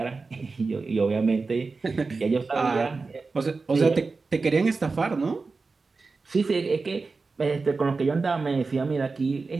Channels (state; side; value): quieter; left; 4.1 dB